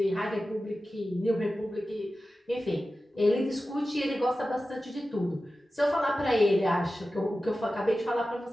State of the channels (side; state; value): both; normal; correlation 0.94